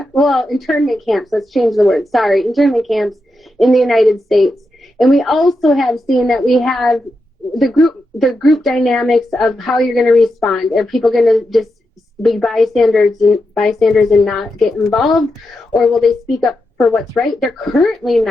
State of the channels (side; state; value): both; normal; correlation 0.87